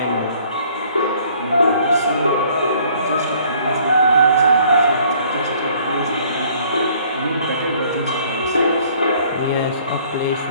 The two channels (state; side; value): inverted; both; correlation -0.59